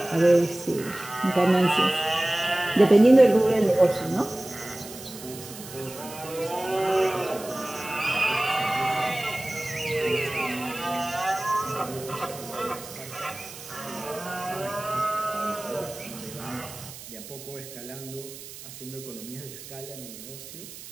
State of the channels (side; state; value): right; noise; hiss, 14 dB below the sound